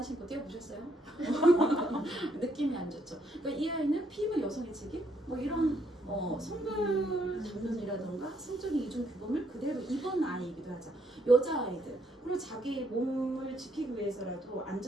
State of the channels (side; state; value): both; normal; correlation 0.72